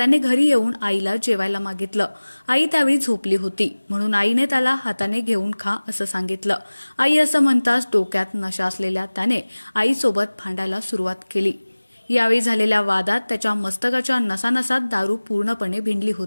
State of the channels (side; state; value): both; inverted; correlation -1.00